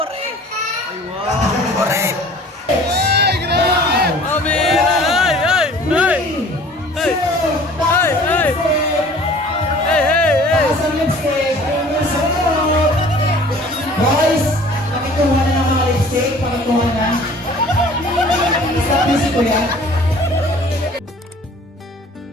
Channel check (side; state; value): both; normal; correlation 0.49